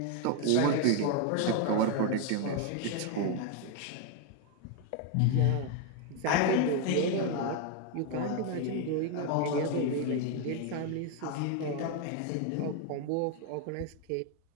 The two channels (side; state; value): both; different; correlation 0.01